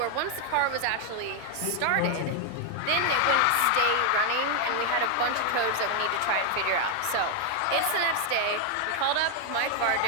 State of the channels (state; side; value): different; both; correlation 0.00